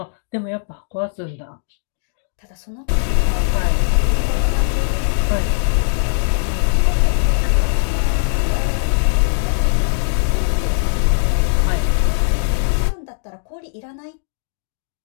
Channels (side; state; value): right; silent; digital silence